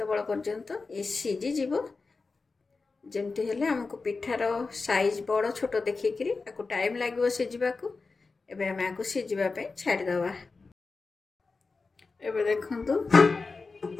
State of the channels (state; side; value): quieter; right; 4.1 dB